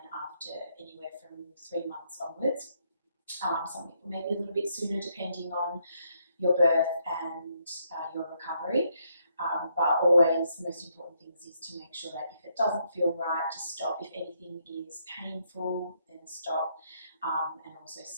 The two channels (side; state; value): both; inverted; correlation -0.75